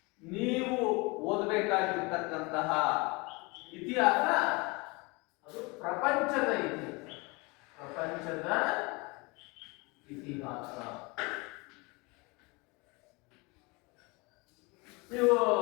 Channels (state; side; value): quieter; right; 27.0 dB